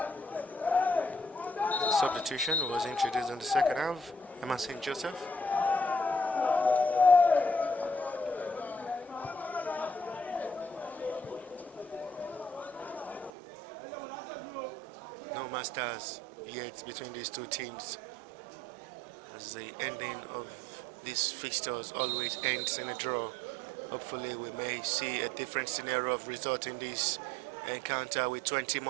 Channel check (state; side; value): drops out; left; at 13.3 s